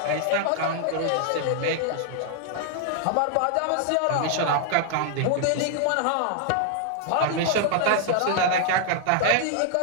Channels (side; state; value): both; different; correlation 0.00